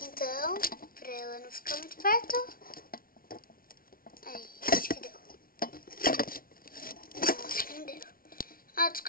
Então, pra ela não ficar muito perto. Aí, acho que deu. Não, acho que não deu. Ah,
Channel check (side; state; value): right; late; 0.43 ms